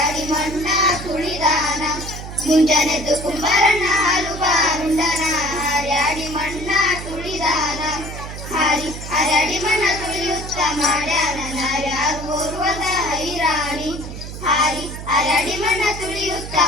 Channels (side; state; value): right; noise; hum, 10 dB below the sound